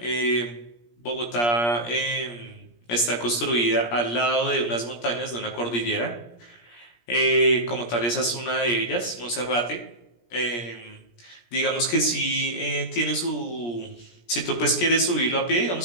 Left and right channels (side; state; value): right; late; 17 ms